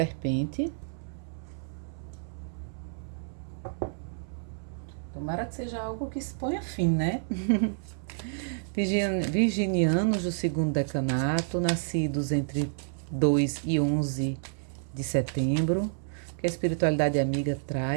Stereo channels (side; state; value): left; silent; 58 dB below the other